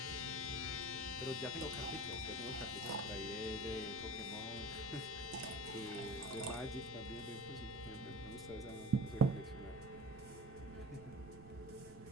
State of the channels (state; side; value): noise; right; rumble, 18 dB below the sound